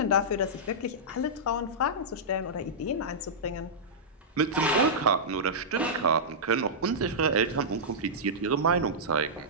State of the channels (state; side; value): normal; both; correlation -0.13